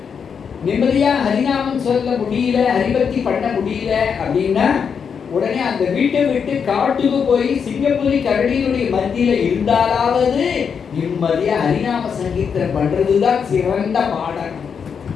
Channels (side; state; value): right; quieter; 6.6 dB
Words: நிம்மதியா ஹரிநாமம் சொல்ல முடியல, ஹரிபக்தி பண்ண முடியல அப்படின்னா உடனே அந்த வீட்டை விட்டு காட்டுக்கு போய் சிங்கப்புலி கரடியினுடைய மத்தியில இருந்தாலாவது நிம்மதியா ஹரிநாம சங்கீர்த்தனம் பண்றதுதான் சிறந்த பாடம்.